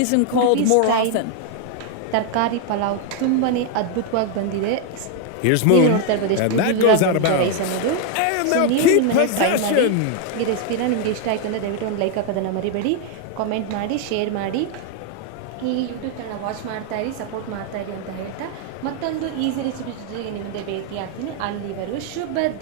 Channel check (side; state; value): both; different; correlation 0.00